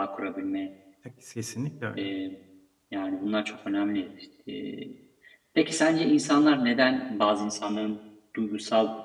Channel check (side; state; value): both; identical; correlation 1.00